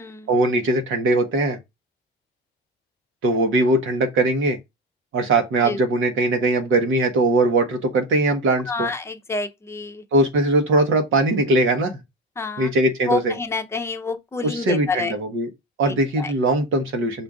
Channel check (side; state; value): both; normal; correlation 0.21